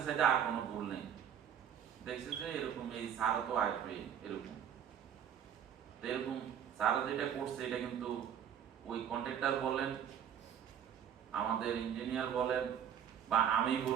সেটা আর কোনো ভুল নেই, দেখছে যে এরকম এই সারও তো আসবে এরকম। তো এরকম সারা যেটা করছে এটা কিন্তু ওই কন্ট্রাক্টর বলেন, আমাদের ইঞ্জিনিয়ার বলেন, বা আমি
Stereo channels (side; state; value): left; quieter; 9.0 dB